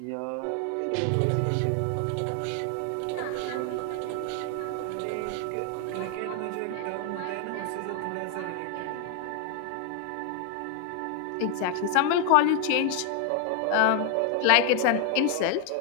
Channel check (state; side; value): different; both; correlation 0.00